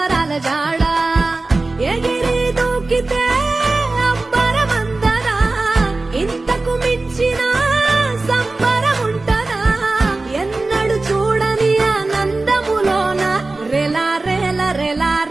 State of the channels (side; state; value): left; quieter; 3.3 dB